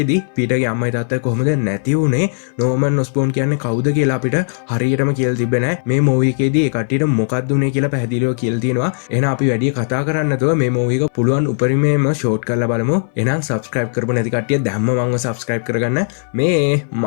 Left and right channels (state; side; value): silent; right; 68 dB below the other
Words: පීටර්ගේ අම්මයි තාත්තයි කොහොමද නැති වුනේ? Norman Osborn කියන්නේ කවුද කියලා අපිට හරියටම කියලා තිබ්බේ නැහැ. මේ movie එකේදී ඒ කට්ටියට මොකක්ද උනේ කියලා පැහැදිලිව කියලා තියෙනවා. එහෙනම් අපි වැඩි කතා කරන්න නැතුව මේ මූවි එක පුළුවන් උපරිමයෙන්ම ෂෝට් කරලා බලමු. එහෙනම් subscribe කරපු නැති කට්ටිය දැම්ම මංව subscribe කරගන්න. මේ